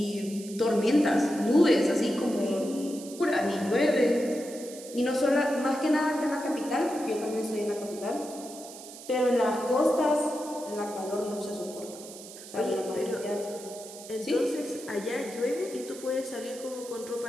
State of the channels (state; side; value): noise; right; hiss, 15 dB below the sound